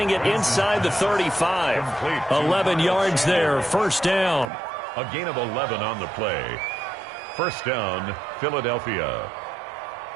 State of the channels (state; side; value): drops out; left; at 4.5 s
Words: it inside the 35. 11 yards there, first down. A gain of 11 on the play. First down, Philadelphia.